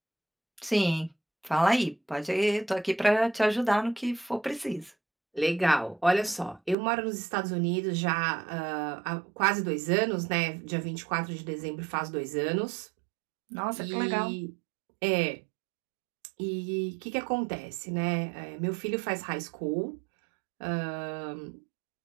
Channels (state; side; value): drops out; left; at 6.8 s